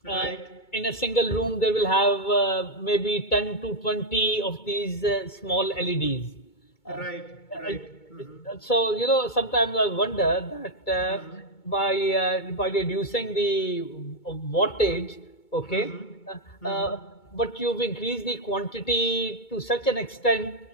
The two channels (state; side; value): late; right; 2.2 ms